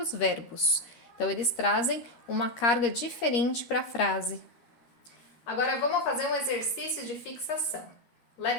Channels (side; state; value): right; late; 13 ms